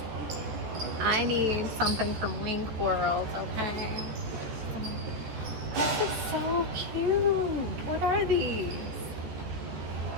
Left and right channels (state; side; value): late; left; 13 ms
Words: I need something from Wink World, okay? This is so cute. What are these?